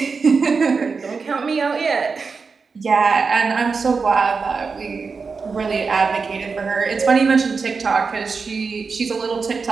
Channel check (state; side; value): quieter; left; 4.9 dB